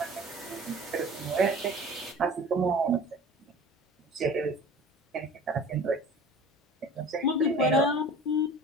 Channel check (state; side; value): normal; both; correlation 0.41